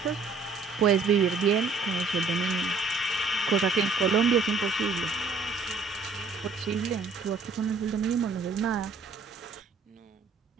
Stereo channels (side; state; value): left; quieter; 4.2 dB